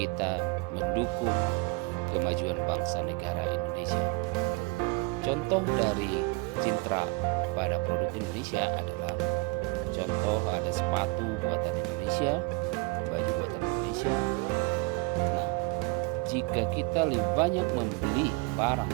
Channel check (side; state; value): left; quieter; 24.9 dB